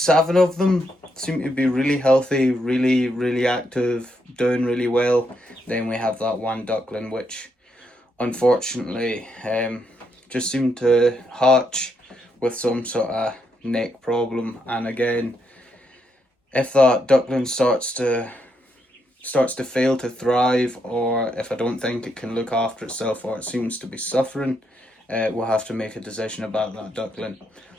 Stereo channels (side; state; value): both; normal; correlation 0.79